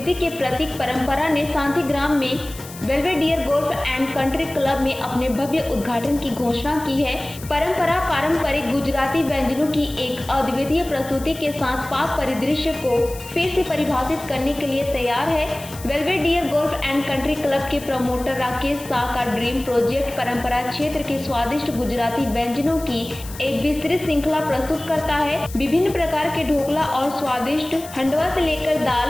के प्रतीक परंपरा ने शांतिग्राम में Belvedere golf and country club में अपने भव्य उद्घाटन की घोषणा की है। परंपरा पारंपरिक गुजराती व्यंजनों की एक अद्वितीय प्रस्तुति के साथ पाक परिदृश्य को फिर से परिभाषित करने के लिए तैयार है। Belvedere golf and country club के प्रमोटर राकेश शाह का ड्रीम प्रोजेक्ट परंपरा क्षेत्र के स्वादिष्ट गुजराती व्यंजनों की एक विस्तृत श्रृंखला प्रस्तुत करता है। विभिन्न प्रकार के ढोकला और स्वादिष्ट हंडवा से लेकर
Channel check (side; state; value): left; noise; hiss, 16 dB below the sound